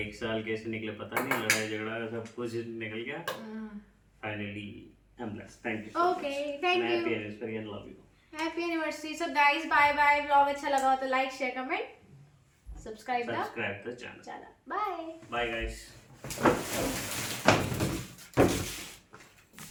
1 साल कैसे निकले पता नहीं, लड़ाई झगड़ा सब कुछ निकल गया। Finally I am blessed. Thank you. Okay, thank you. Happy anniversary and love you. Happy anniversary. So guys bye bye. Vlog अच्छा लगा हो तो like share comment subscribe the channel. Bye bye guys.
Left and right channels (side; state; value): both; identical; correlation 1.00